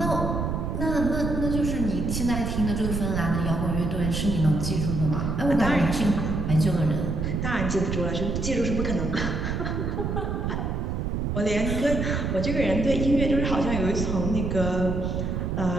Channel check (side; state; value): right; noise; rumble, 1 dB below the sound